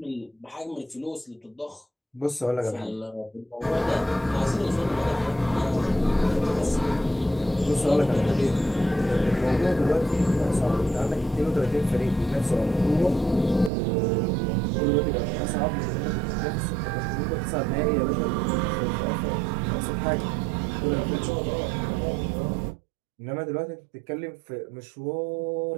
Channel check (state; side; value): drops out; left; at 13.7 s